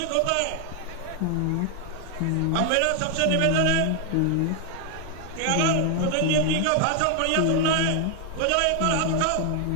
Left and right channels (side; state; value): both; different; correlation 0.01